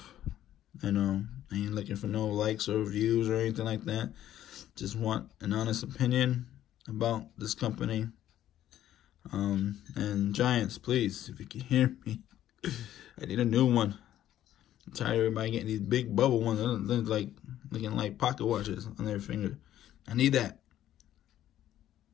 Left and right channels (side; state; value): right; quieter; 12.2 dB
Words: I know I ain't looking for no likes or views or anything like that. Just want an honest opinion about this company. And Giants, please, if you can hear me, I need a new one. I'm tired of everybody getting these big bubble ones. They're like looking like pocket watches on their finger. I need that.